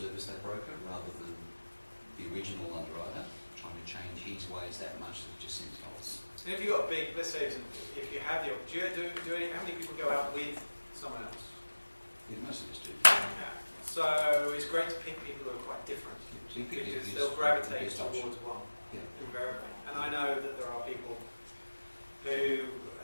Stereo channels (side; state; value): both; inverted; correlation -1.00